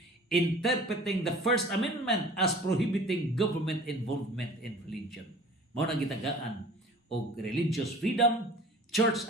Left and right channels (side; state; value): both; normal; correlation 0.44